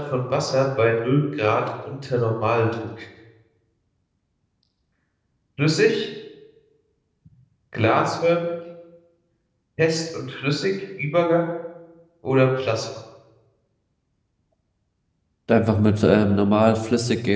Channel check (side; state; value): both; identical; correlation 1.00